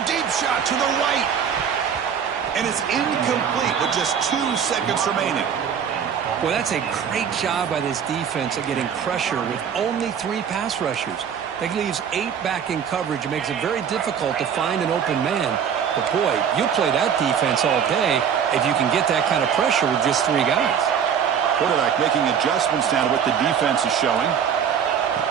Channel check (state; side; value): quieter; left; 7.8 dB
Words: deep shot to the right. And it's incomplete with just 2 seconds remaining. Well, that's a great job by this defense at getting pressure with only 3 pass rushers. That leaves 8 back in coverage. It makes it very difficult to find an open man. But, boy, you play that defense all day if you can get that kind of pressure with just 3 guys. Quarterback making adjustments now to what the defense is showing.